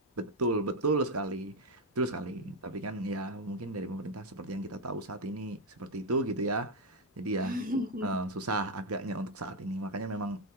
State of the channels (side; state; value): both; normal; correlation 0.05